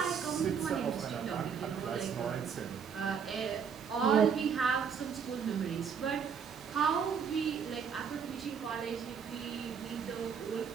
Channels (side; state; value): left; quieter; 6.8 dB